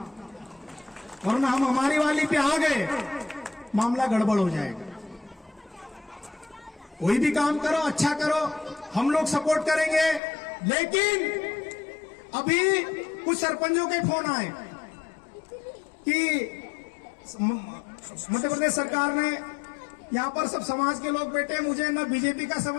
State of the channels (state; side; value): drops out; right; at 10.2 s